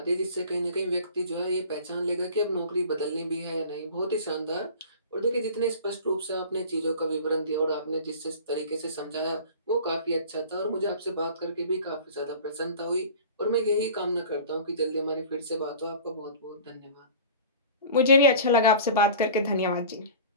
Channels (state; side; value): inverted; both; correlation -0.40